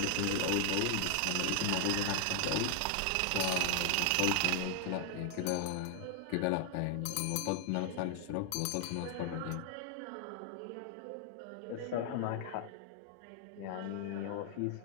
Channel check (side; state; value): both; different; correlation 0.00